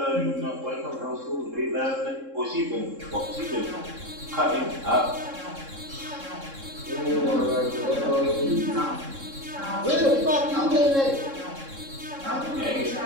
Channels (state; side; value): late; left; 3.7 ms